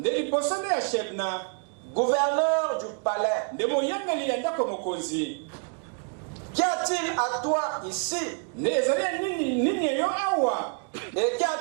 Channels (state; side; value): quieter; left; 39.4 dB